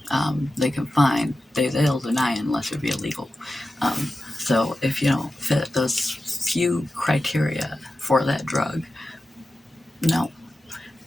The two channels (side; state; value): both; normal; correlation 0.93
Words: they can find, they'll deny it unless it be illegal. So if you don't fit those few criteria for that drug, no.